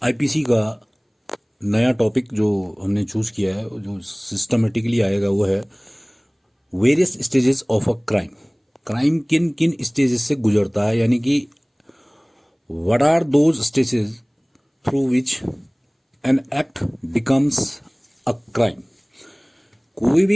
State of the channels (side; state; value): both; identical; correlation 1.00